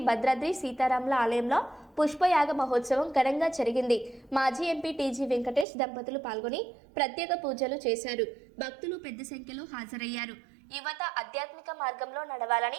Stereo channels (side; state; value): left; drops out; at 5.7 s